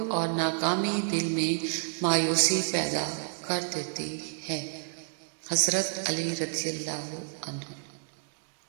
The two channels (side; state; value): left; silent; digital silence